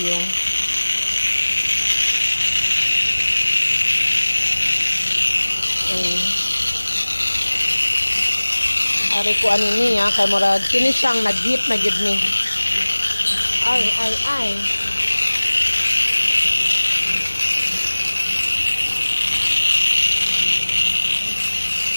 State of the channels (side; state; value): both; inverted; correlation -1.00